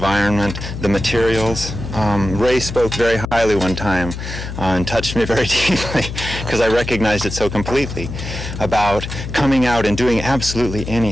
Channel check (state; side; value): noise; left; hum, 8 dB below the sound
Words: the materials. Ray spoke very highly one time and touched me very deeply because I recognized it so completely about coming out and doing absolutely